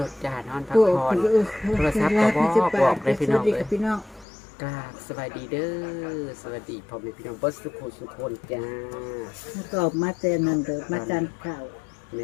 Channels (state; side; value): drops out; right; at 4.2 s